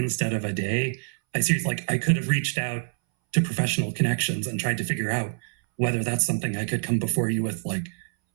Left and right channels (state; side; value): silent; left; 61 dB below the other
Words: of a day, I could have reached out to professional connections and tried to figure out whether that's something I could come before you with